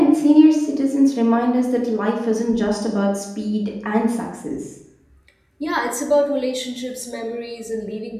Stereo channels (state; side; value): identical; both; correlation 1.00